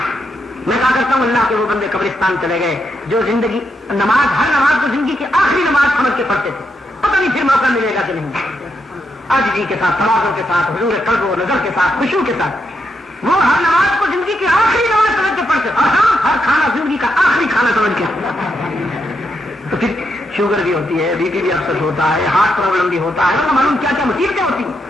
میں کہا کرتا ہوں اللہ کے وہ بندے قبرستان چلے گئے جو زندگی ہر نماز کو زندگی کی آخری نماز سمجھ کے پڑھتے تھے، پتہ نہیں پھر موقع ملے گا کہ نہیں. عاجزی کے ساتھ، تواضع کے ساتھ، حضور قلب و نظر کے ساتھ، خشوع کے ساتھ وہ ہر نماز کو زندگی کی آخری نماز سمجھ کے پڑھتے. اور ہاں، ہر کھانا زندگی کا آخری کھانا سمجھ کے. تو پھر شوگر بھی ہوتی ہے، بی پی بھی اکثر ہوتا ہے، ہارٹ پرابلم بھی ہوتا ہے، معلوم کیا کیا مصیبتیں ہوتی ہیں.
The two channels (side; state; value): both; normal; correlation 0.81